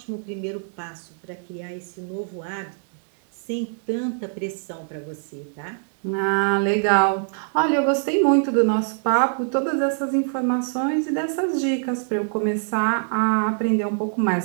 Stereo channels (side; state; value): left; silent; digital silence